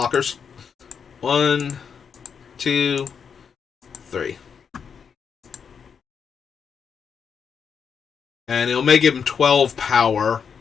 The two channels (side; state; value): right; quieter; 6.7 dB